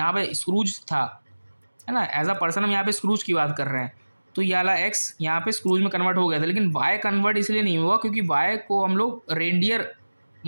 पे स्क्रूज था, है ना। एज अ पर्सन हम यहाँ पे स्क्रूज की बात कर रहे हैं, तो ये वाला एक्स यहाँ पे स्क्रूज में कन्वर्ट हो गया था, लेकिन वाई कन्वर्ट इसलिए नहीं हुआ क्योंकि वाई को हम लोग रेंडियर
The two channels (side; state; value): both; inverted; correlation -1.00